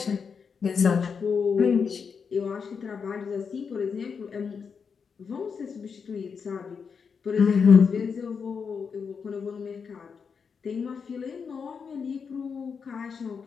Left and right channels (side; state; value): right; quieter; 6.0 dB